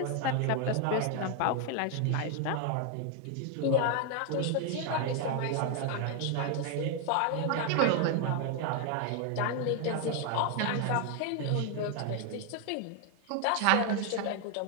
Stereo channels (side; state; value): both; different; correlation 0.01